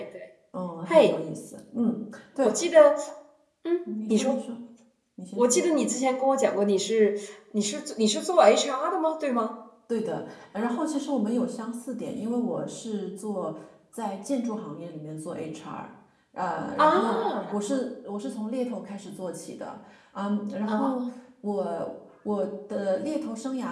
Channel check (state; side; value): identical; both; correlation 1.00